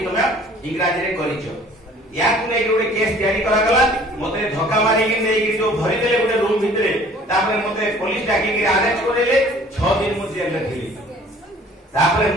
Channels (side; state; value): both; normal; correlation 0.52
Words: तुमे इंग्रजी रे करिछो या कुने गोटे केस तैयारी करा गला मते धक्का मारी के नै जो भरि देले गोटे रूम भितरे तापर मते पुलिस डाकी के अरेस्ट करेले 6 दिन मु जेल रे थिली तापर